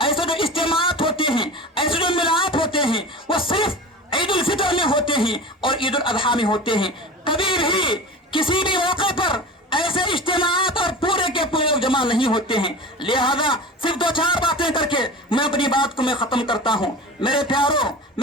جو اجتماعات ہوتے ہیں، ایسے جو ملاپ ہوتے ہیں وہ صرف عید الفطر میں ہوتے ہیں اور عید الاضحیٰ میں ہوتے ہیں، کبھی بھی کسی بھی موقع پر ایسے اجتماعات اور پورے کے پورے لوگ جمع نہیں ہوتے ہیں۔ لہذا صرف 2-4 باتیں کر کے میں اپنی بات کو میں ختم کرتا ہوں۔ میرے پیاروں،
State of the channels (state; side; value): normal; both; correlation 0.33